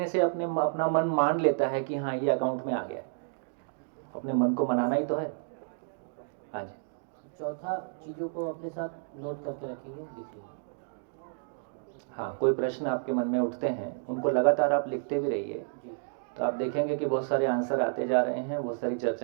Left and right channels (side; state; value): left; silent; digital silence